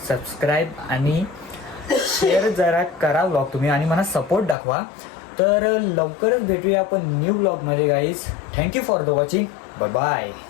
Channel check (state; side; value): drops out; right; at 4.5 s